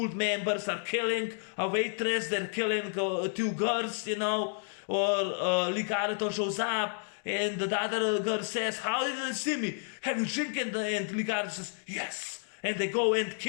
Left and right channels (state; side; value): silent; right; digital silence